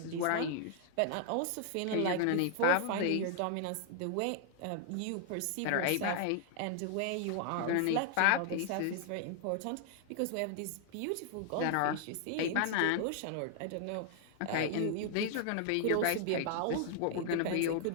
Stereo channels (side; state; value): both; different; correlation 0.00